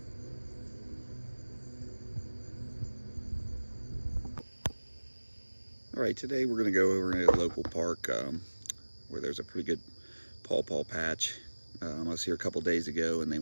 All right, today we're going to go over in a local park where there's a pretty good pawpaw patch. I was here a couple days ago and they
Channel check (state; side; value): inverted; both; correlation -1.00